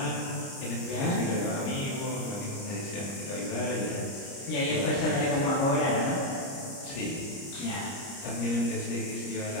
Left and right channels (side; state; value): right; late; 30 ms